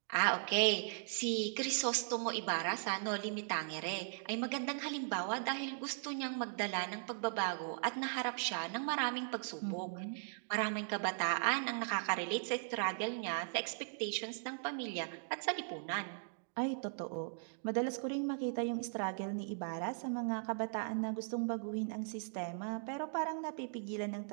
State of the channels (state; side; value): silent; left; digital silence